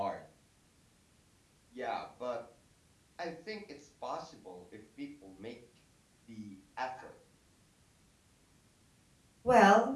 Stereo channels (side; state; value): both; identical; correlation 1.00